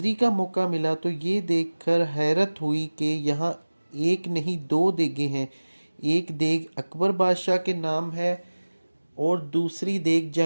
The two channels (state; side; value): inverted; both; correlation -1.00